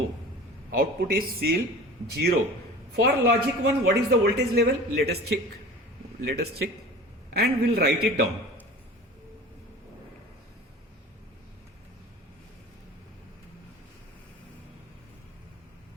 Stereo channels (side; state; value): both; normal; correlation 0.40